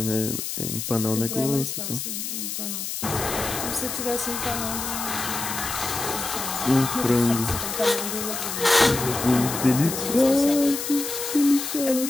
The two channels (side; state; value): left; noise; hiss, 5 dB below the sound